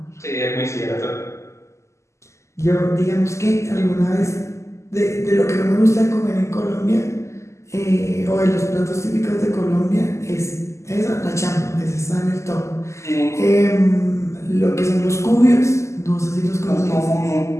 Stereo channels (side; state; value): right; late; 0.13 ms